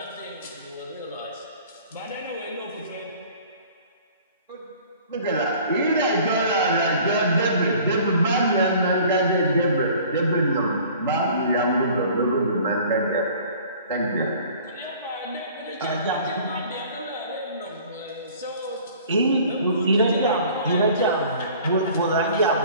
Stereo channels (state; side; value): inverted; both; correlation -0.49